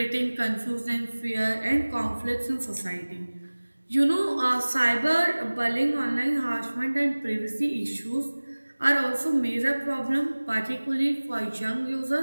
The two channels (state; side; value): inverted; both; correlation -1.00